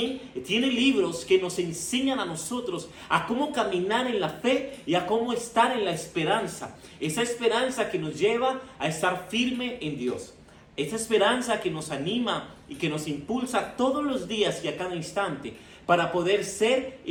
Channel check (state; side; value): identical; both; correlation 1.00